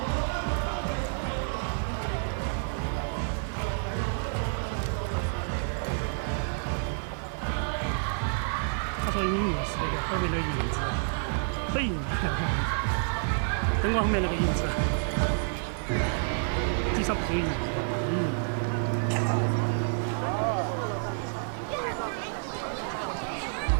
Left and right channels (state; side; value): silent; left; digital silence